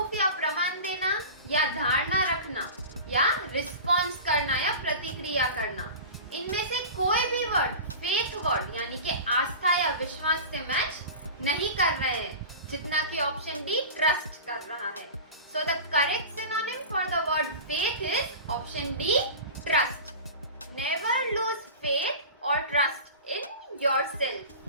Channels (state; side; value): inverted; both; correlation -0.33